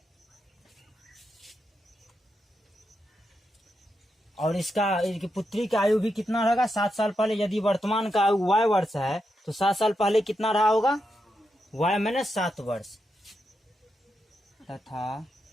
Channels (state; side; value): normal; both; correlation 0.85